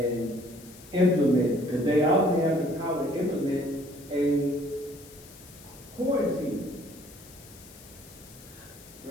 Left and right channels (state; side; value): noise; left; hiss, 20 dB below the sound